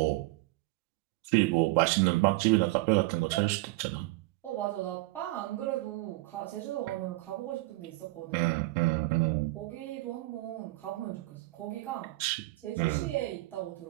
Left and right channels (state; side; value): quieter; left; 20.5 dB